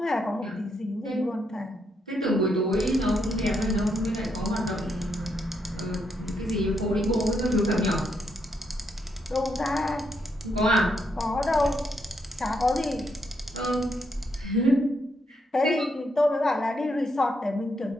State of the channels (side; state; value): both; normal; correlation 0.78